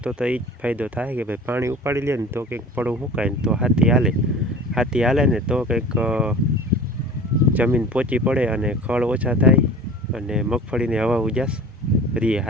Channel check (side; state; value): both; normal; correlation 0.41